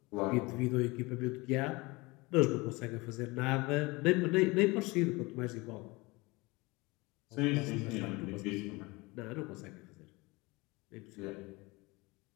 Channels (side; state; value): right; quieter; 24.1 dB